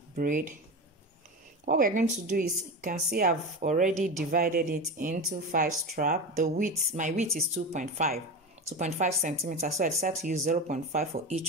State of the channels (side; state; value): both; normal; correlation 0.23